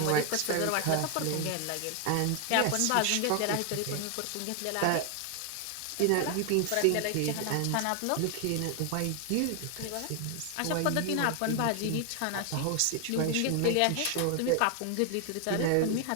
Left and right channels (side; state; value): both; different; correlation 0.00